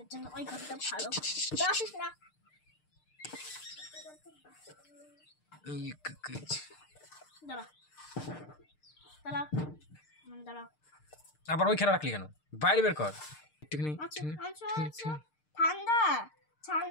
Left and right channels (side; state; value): right; late; 6.6 ms